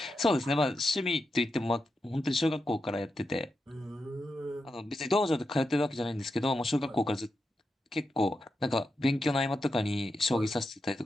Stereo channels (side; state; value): both; normal; correlation 0.88